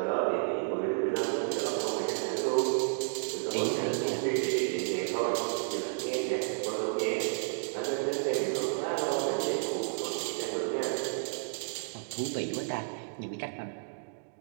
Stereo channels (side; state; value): left; silent; digital silence